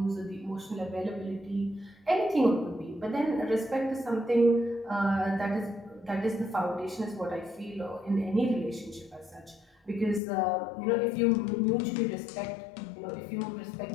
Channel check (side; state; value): right; drops out; at 10.2 s